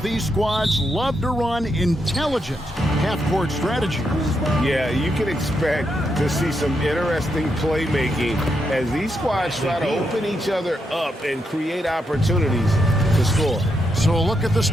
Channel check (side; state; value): both; normal; correlation 0.81